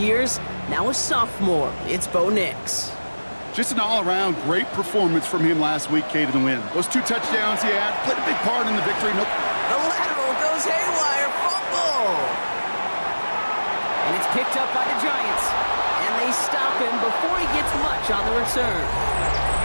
Now a sophomore. It's Bo Nix. Just an all-around great performance from him last week, Kate, in the win. Those 2 touchdowns he had played a big part in the victory. The lateral goes haywire. Fumble. And it's picked up by the Giants. They stop him before he gets much on the return.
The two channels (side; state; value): both; inverted; correlation -1.00